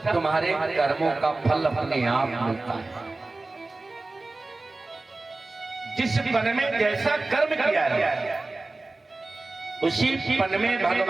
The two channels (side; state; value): left; quieter; 3.2 dB